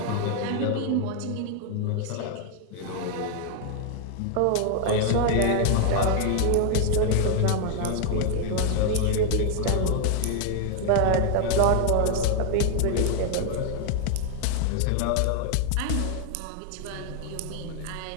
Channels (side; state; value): both; different; correlation 0.00